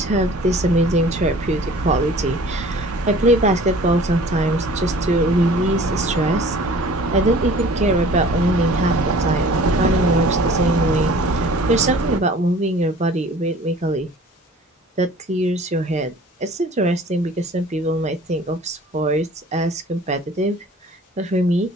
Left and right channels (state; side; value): normal; both; correlation 0.47